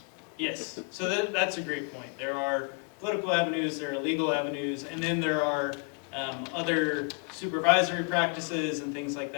Yes, so that's a great point. There are political avenues, there are legal avenues, and then there are other supervisory practices and things like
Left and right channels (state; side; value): quieter; right; 35.4 dB